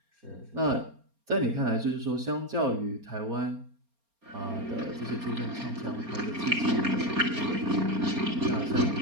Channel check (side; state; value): left; late; 4.3 ms